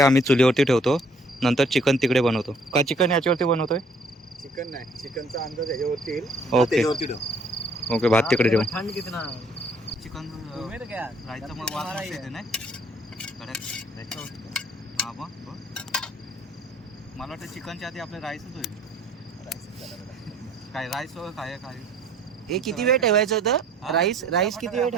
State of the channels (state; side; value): normal; both; correlation 0.59